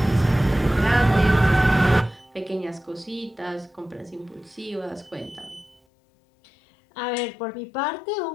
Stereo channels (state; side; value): drops out; right; at 5.8 s